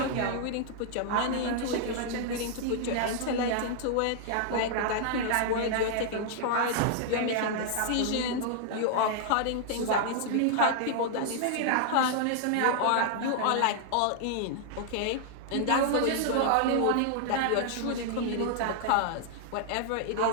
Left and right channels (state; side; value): different; both; correlation -0.01